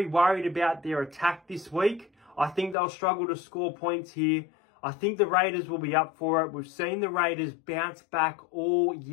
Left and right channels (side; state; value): right; drops out; at 2.8 s